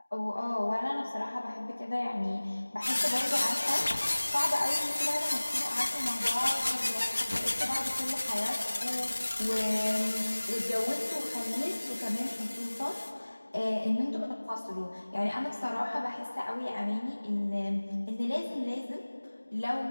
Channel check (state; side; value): inverted; both; correlation -1.00